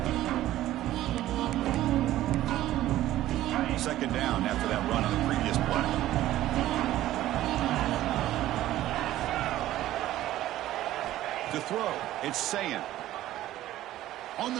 Second down after that run on the previous play. To throw, it's Sayan. On the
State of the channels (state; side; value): quieter; left; 14.3 dB